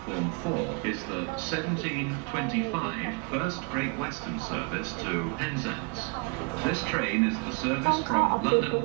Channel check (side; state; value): left; quieter; 32.3 dB